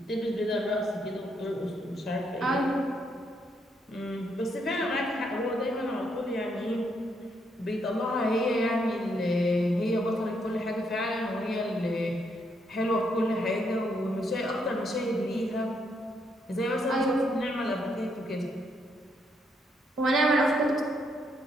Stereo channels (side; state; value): both; normal; correlation 0.75